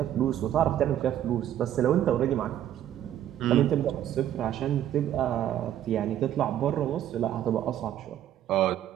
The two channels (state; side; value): quieter; left; 11.4 dB